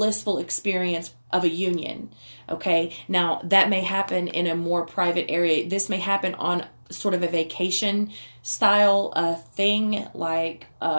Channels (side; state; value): both; inverted; correlation -1.00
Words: experience of a union. Okay, now that may happen in a more private area. This may happen on sort of a vacation style thing, like